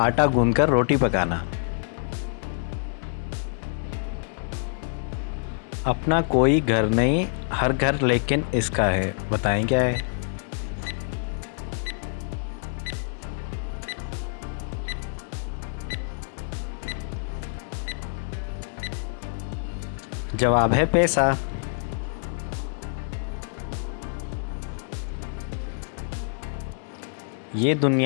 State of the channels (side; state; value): right; silent; digital silence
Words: गूंथकर रोटी पकाना। अपना कोई घर नहीं, हर घर लेकिन इसका है। बताएं क्या है? जवाब है पैसा। ये